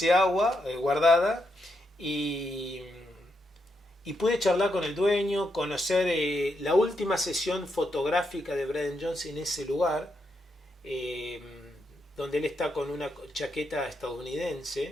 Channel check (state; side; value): normal; both; correlation 0.81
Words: agua guardada, y pude charlar con el dueño, conocer la última sesión fotográfica de Brian Jones en ese lugar, donde él está con una chaqueta